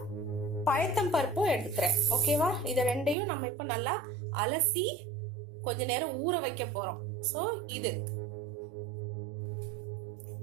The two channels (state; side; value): drops out; left; at 3.2 s